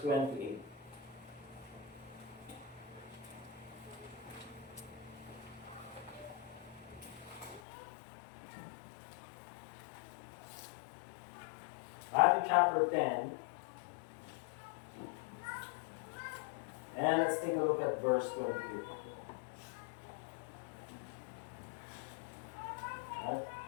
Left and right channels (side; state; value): right; drops out; at 7.6 s